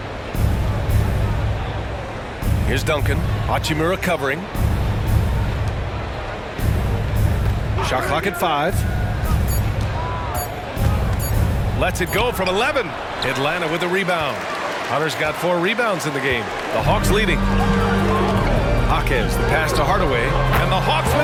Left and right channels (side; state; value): both; identical; correlation 1.00